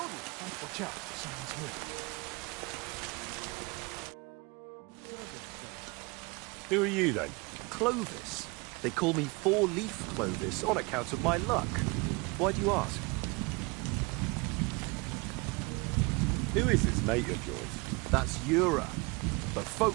Watch out, someone's here. Who are you then? Clovis. They call me Four-Leaf Clovis on account of my luck. Why do you ask? Who is this mate of yours? That's Ura, but folk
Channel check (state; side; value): quieter; left; 27.7 dB